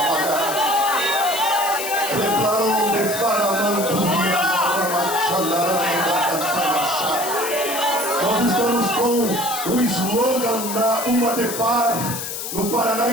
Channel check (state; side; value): noise; left; hiss, 6 dB below the sound